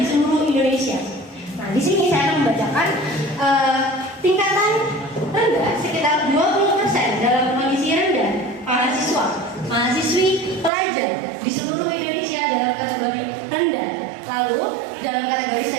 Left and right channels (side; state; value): left; drops out; at 10.7 s